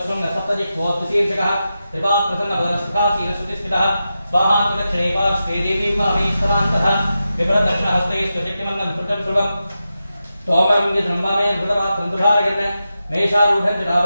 सप्तजिह्वोद्शीर्षकः त्रिपात्रसन्नभरसुखासीनश्रुतिस्थितः स्वाहान्तदक्षिणे पार्श्वे देवी वामेश्वरान्तः विभ्रदक्षिणहस्ते स्वशक्तिमन्दं धृतं ध्रुवं तोमरं यद्रम्बामे धृतपात्रं दुधारगन् मेषारूढं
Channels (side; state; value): both; inverted; correlation -0.90